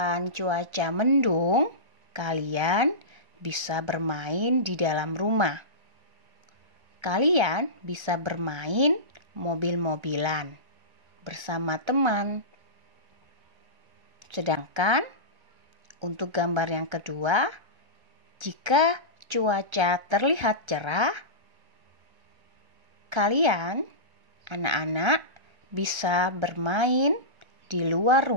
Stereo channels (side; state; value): left; late; 1.3 ms